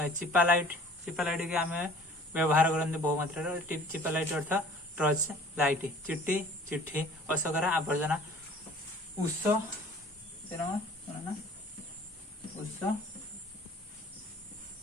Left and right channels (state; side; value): normal; both; correlation 0.49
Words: चिपालाइट चिपालाइट के आम व्यवहार करते बहु मात्रा चिपालाइट अर्थ टर्च लाइट चिट्टी चिट्ठी अशोकरा आवर्जना उष उष